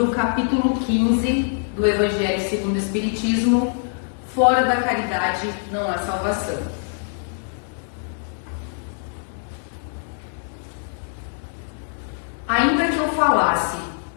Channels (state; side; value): silent; right; digital silence